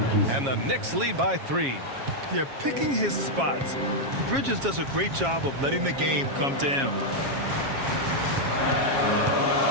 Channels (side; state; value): left; late; 7.3 ms